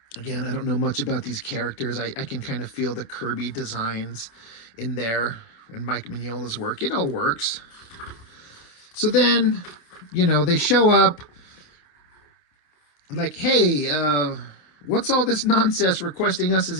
Again, I don't know much about these characters. I can kind of feel the Kirby designs in there and Mike Mignola's work. It all works. So then, they show up like, hey, what's all this nonsense requesting us as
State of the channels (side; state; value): right; late; 28 ms